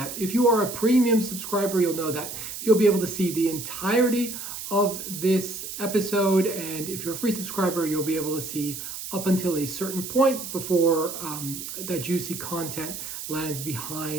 If you are a premium subscriber, you'll know that you'll be able to see the entirety of this episode, and if you're a free subscriber, you'll be able to see up until a certain point before that juicy content lands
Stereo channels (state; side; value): noise; right; hiss, 8 dB below the sound